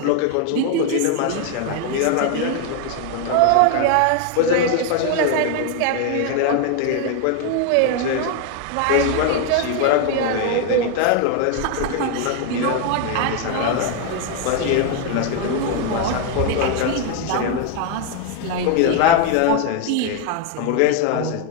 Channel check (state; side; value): different; both; correlation 0.01